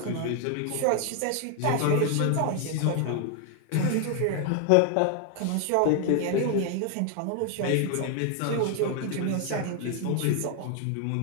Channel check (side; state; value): both; different; correlation 0.00